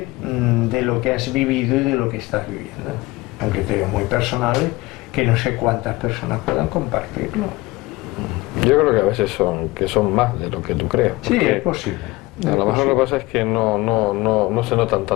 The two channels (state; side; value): quieter; right; 21.1 dB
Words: de lo que has vivido y de lo que estás viviendo. Son criterios muy personales que no sé cuántas personas puedan compartirlo. Yo creo que a veces son más de lo que tú crees. Sí, es posible. A lo mejor lo que pasa es que no se notan